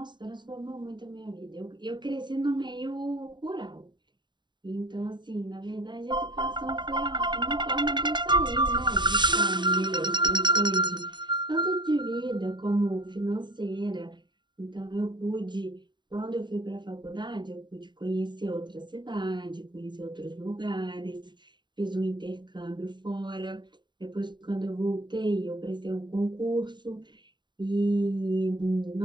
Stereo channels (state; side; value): late; left; 0.22 ms